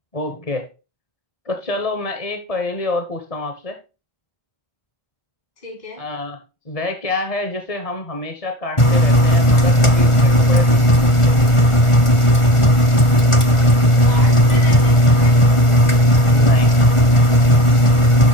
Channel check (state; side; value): late; right; 1.4 ms